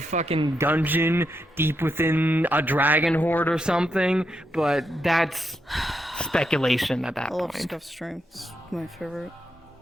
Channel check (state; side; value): normal; both; correlation 0.82